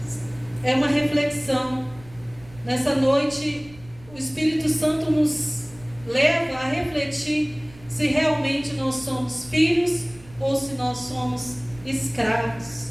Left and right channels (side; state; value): right; noise; rumble, 23 dB below the sound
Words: É uma reflexão. Nessa noite, o Espírito Santo nos leva a refletir se realmente nós somos filhos ou se nós somos escravos.